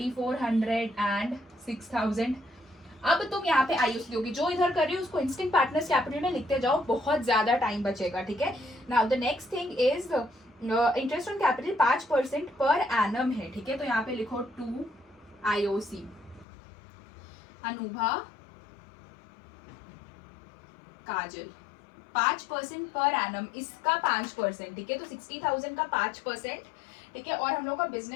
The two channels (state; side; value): drops out; right; at 16.4 s